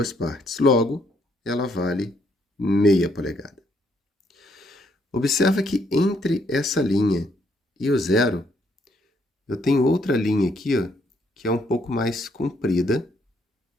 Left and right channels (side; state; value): both; normal; correlation 0.71